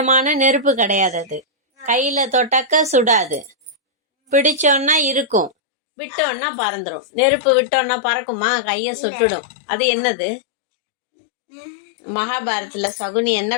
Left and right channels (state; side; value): drops out; right; at 5.5 s